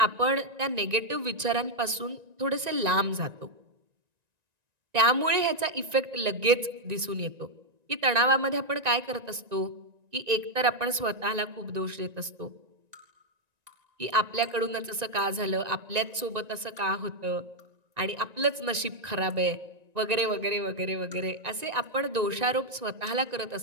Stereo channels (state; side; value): late; left; 1.9 ms